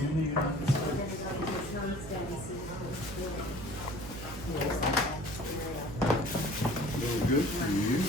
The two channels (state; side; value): noise; right; hum, 10 dB below the sound